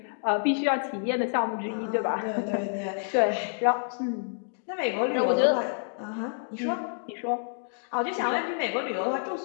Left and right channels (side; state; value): right; silent; digital silence